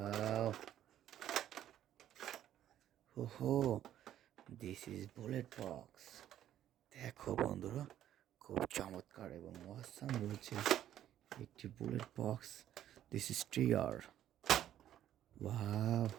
Ho, this is bullet box. দেখো বন্ধুরা, খুব চমৎকার এবং অসাম রয়েছে একটি bullet box. This is trigger. Wow,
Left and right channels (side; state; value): left; quieter; 11.5 dB